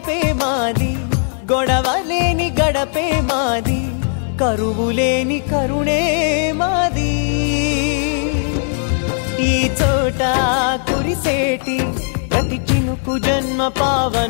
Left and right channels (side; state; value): right; silent; 62 dB below the other